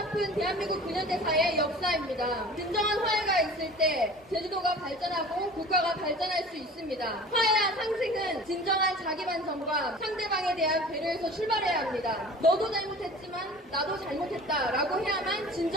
대한민국 근현대사의 역사입니다. 진정한 화해가 있을 때 제주도가 발전하고 국가가 발전할 수 있습니다. 화해와 상생은 진정한 자기 반성과 상대방에 대한 배려에서 출발해야 합니다. 너도 잘못했지만 나도 잘못했다라고 해야만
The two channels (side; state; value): both; normal; correlation 0.41